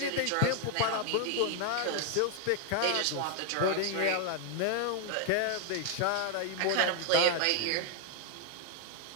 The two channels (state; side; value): different; both; correlation 0.00